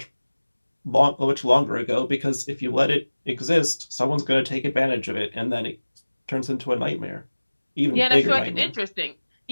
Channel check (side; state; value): both; inverted; correlation -1.00